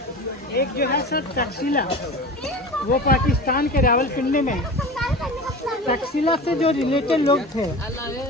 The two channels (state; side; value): normal; both; correlation 0.33